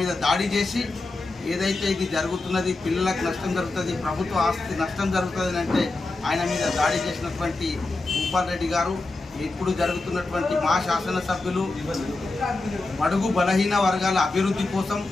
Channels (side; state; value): right; quieter; 3.2 dB